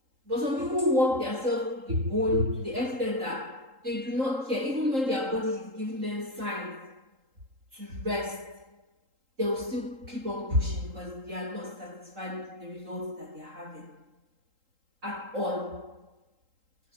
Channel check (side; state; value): left; late; 3.8 ms